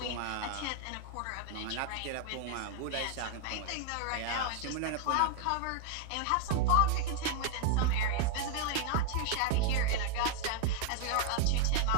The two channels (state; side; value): different; both; correlation 0.00